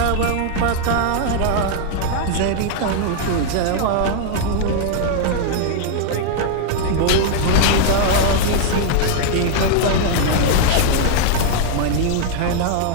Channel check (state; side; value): different; both; correlation 0.00